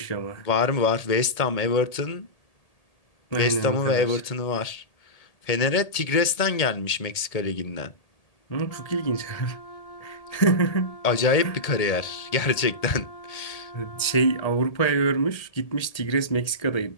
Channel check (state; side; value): late; right; 1.8 ms